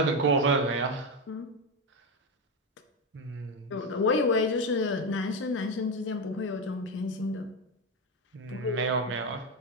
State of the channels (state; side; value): normal; both; correlation 0.10